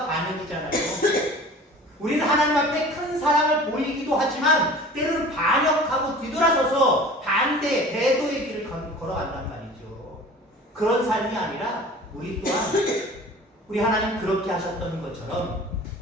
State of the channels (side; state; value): both; normal; correlation 0.42